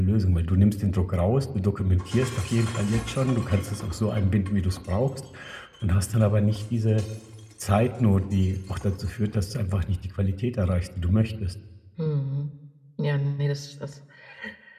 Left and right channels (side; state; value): both; identical; correlation 1.00